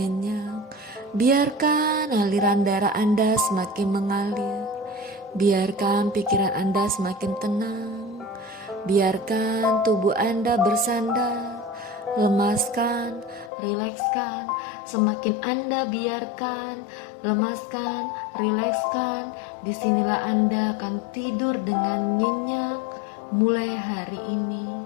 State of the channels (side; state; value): right; drops out; at 13.5 s